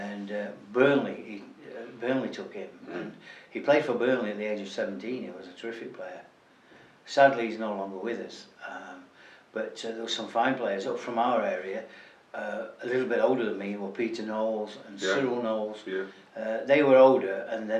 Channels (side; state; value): both; identical; correlation 1.00